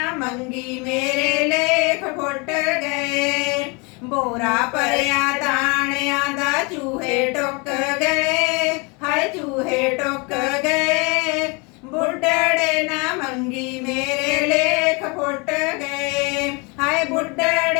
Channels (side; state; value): right; quieter; 30.0 dB